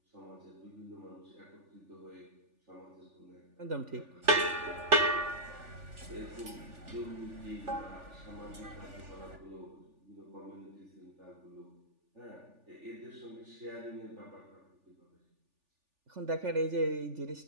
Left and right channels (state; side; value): late; left; 3.4 ms